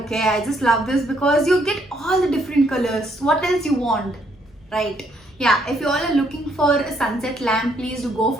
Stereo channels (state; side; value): normal; both; correlation 0.71